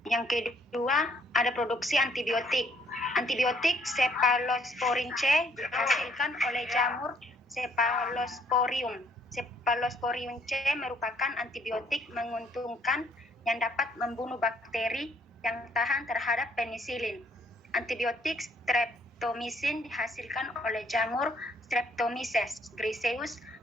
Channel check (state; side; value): normal; both; correlation 0.65